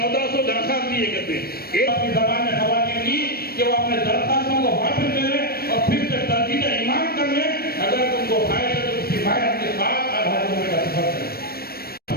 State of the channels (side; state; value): right; late; 0.44 ms